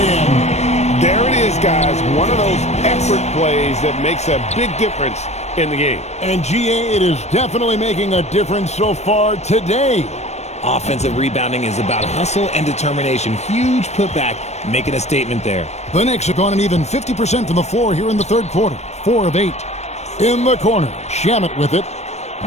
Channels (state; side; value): late; right; 0.32 ms